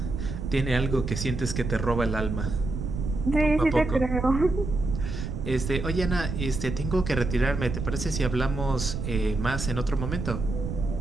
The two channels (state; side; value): noise; right; rumble, 4 dB below the sound